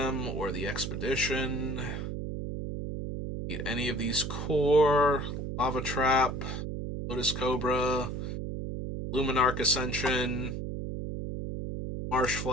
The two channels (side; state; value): right; noise; hum, 4 dB below the sound